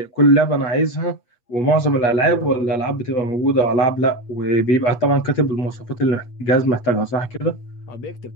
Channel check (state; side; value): late; right; 8.3 ms